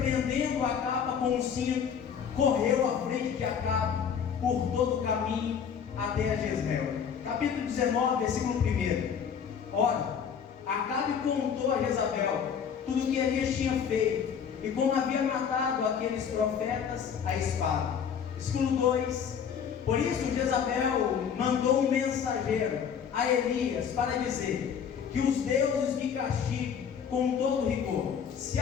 a capa com um cinto, correu à frente de Acabe por todo o caminho até Jezreel. Capítulo 19, versículo 1. Ora, Acabe contou a Jezabel tudo o que Elias tinha feito, e como havia matado aqueles profetas à espada. Versículo 2. Por isso Jezabel mandou um mensageiro a Elias para dizer: que os deuses me castiguem com todo rigor, se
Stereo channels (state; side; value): quieter; right; 7.4 dB